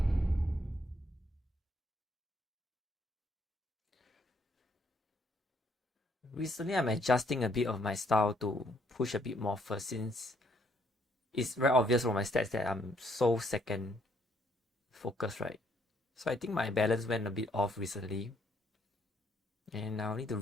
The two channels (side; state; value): both; normal; correlation 0.69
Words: Recently, I'm adjusting a bit of my style to push a bit more first, since it's very obvious from my stats that I'm so second focused, right? So I think my balance went a bit off recently. And I'll need to